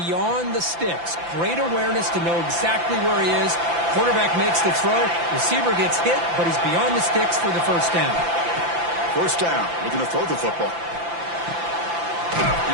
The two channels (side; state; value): left; late; 5.9 ms